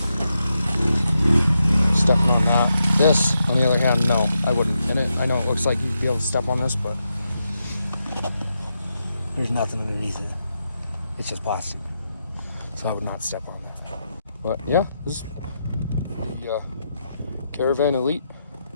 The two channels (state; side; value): inverted; both; correlation -0.85